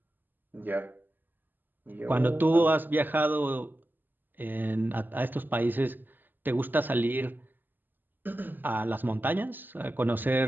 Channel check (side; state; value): left; late; 0.090 ms